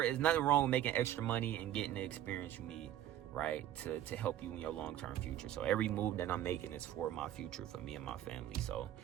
with making extra money and getting the experience you need, right, to help you in your long-term future. So every move that I'm making is for my future, for me and my family. So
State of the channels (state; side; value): quieter; left; 11.8 dB